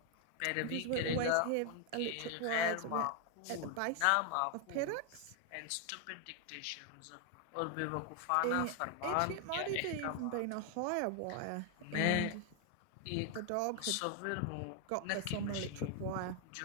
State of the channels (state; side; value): different; both; correlation 0.00